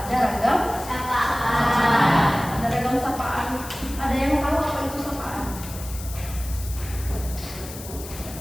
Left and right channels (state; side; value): noise; left; hiss, 13 dB below the sound